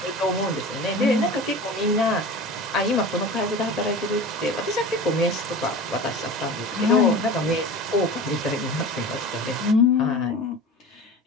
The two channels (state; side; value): normal; both; correlation 0.34